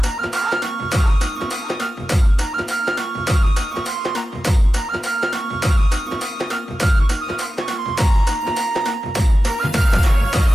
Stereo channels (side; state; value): both; normal; correlation 0.93